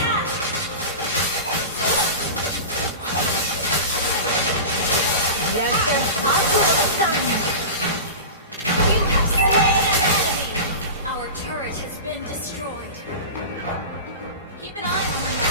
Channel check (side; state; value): both; inverted; correlation -0.30